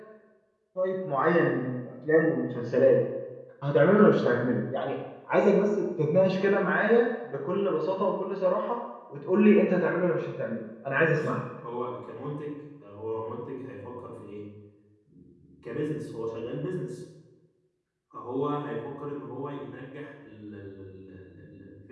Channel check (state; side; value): identical; both; correlation 1.00